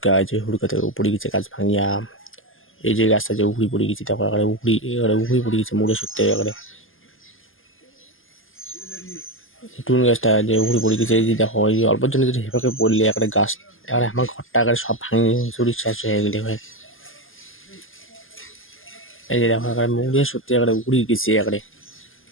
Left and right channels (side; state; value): right; late; 0.59 ms